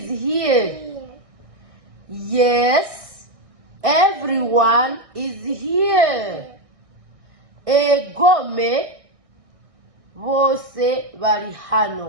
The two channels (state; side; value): late; left; 1.6 ms